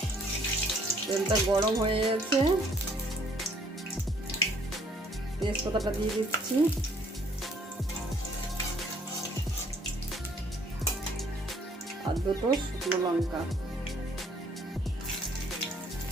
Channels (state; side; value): normal; both; correlation 0.63